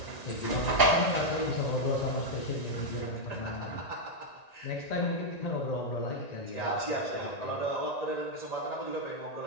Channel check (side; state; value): right; late; 1.9 ms